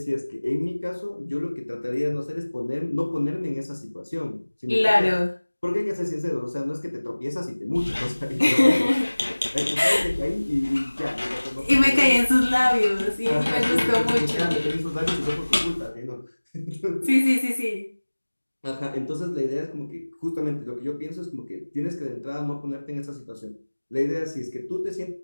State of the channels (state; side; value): inverted; both; correlation -1.00